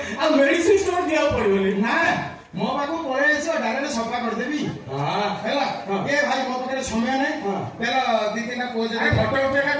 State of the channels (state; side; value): identical; both; correlation 1.00